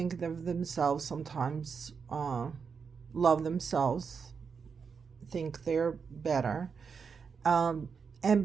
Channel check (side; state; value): left; quieter; 5.9 dB